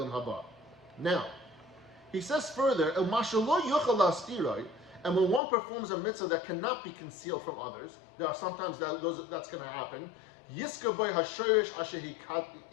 haba. Now, he says further, and when one performs a mitzvah that cannot be concealed from others, there are sometimes that's going to happen. He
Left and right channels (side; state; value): right; drops out; at 5.4 s